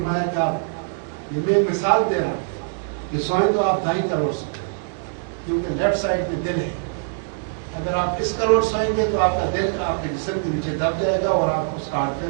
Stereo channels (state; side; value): silent; left; digital silence